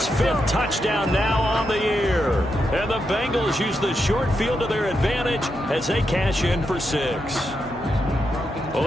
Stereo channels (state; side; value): normal; both; correlation 0.84